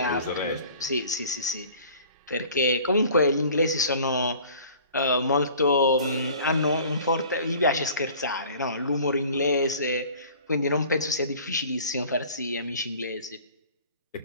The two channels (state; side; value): inverted; both; correlation -0.48